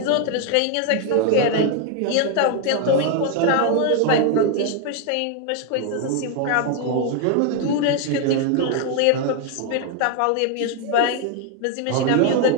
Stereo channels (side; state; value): both; different; correlation 0.01